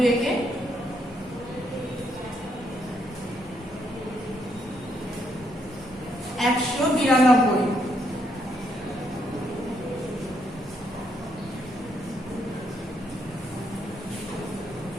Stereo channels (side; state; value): both; normal; correlation 0.74